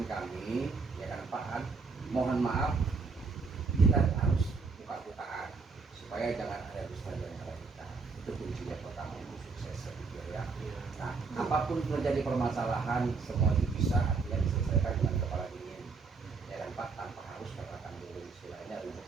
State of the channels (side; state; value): left; quieter; 4.6 dB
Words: kami, ya kan Pak, mohon maaf, kita harus buka-bukaan supaya jangan ada dusta di antara kita. Itu kuncinya pertama untuk sukses, saya pikir ya. Nah, apapun terjadi permasalahan, semua bisa artinya diselesaikan dengan kepala dingin, ya kan Pak, tanpa harus katakan dulu istilahnya